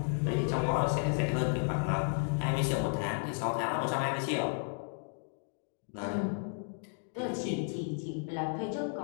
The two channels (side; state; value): right; silent; 56 dB below the other